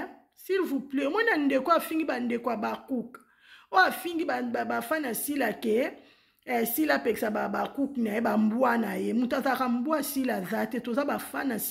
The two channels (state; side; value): identical; both; correlation 1.00